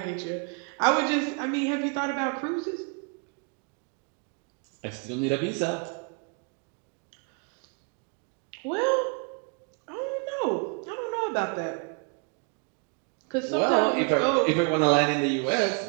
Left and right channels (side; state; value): left; quieter; 36.4 dB